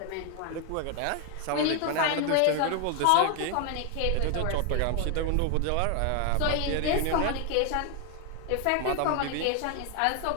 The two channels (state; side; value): different; both; correlation 0.01